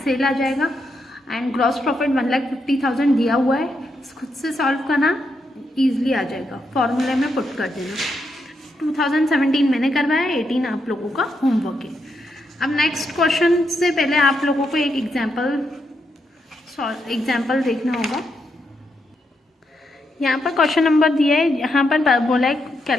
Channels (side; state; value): both; normal; correlation 0.81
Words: सेल आ जाएगा. एंड ग्रॉस प्रॉफिट 1,50,000 दिया हुआ है, खुद से सॉल्व करना, ईजिली आ जाएगा. फॉर्मूले में पुट कर देना. 2017 मैंने करवाया, 18 आप लोगों का होमवर्क है. अब नेक्स्ट क्वेश्चन से पहले आप लोगों को एक एग्जाम्पल देखना होगा. यहाँ पर क्वेश्चन नंबर दिया है, यहाँ पर बोला है